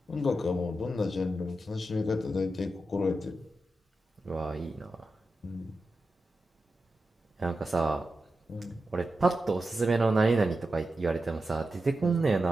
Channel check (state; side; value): normal; both; correlation 0.90